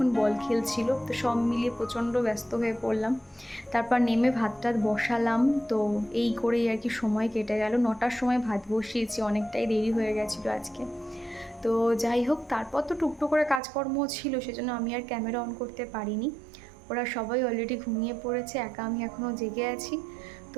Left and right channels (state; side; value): drops out; left; at 13.6 s